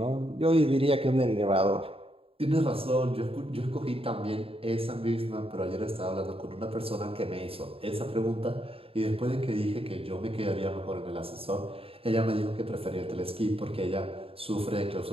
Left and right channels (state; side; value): late; left; 0.27 ms